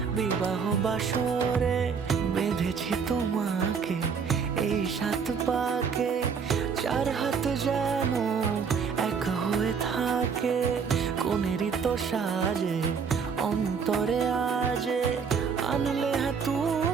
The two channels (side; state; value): left; quieter; 6.1 dB